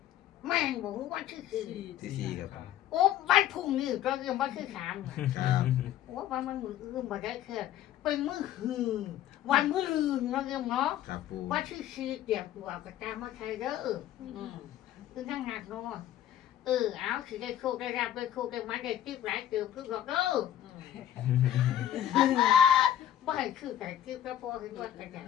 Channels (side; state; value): right; quieter; 11.6 dB